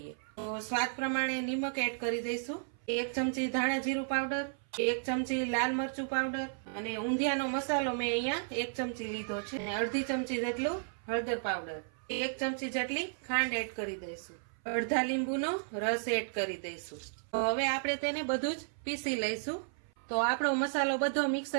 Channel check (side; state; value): left; silent; 55 dB below the other